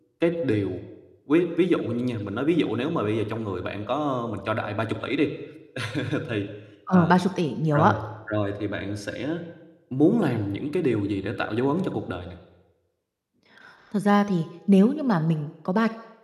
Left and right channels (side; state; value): both; identical; correlation 1.00